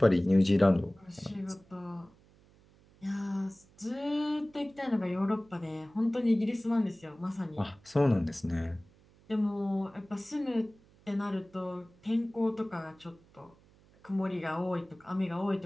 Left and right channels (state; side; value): noise; right; hum, 28 dB below the sound